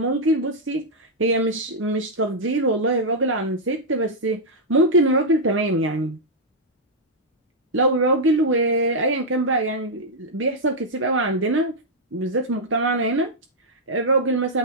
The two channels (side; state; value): both; normal; correlation -0.05